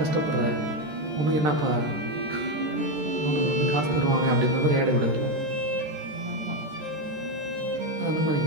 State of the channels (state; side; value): late; left; 13 ms